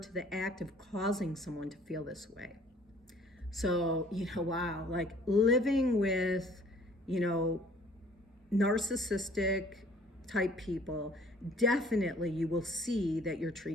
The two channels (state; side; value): normal; both; correlation 0.55